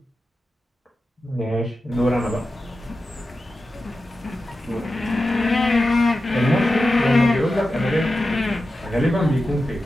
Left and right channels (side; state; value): both; normal; correlation 0.92